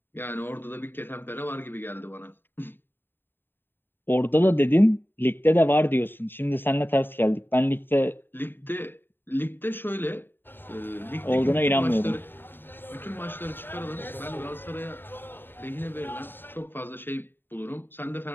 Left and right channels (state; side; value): late; right; 0.098 ms